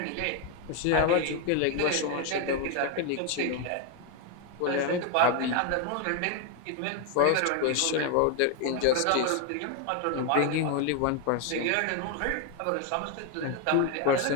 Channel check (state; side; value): different; both; correlation 0.01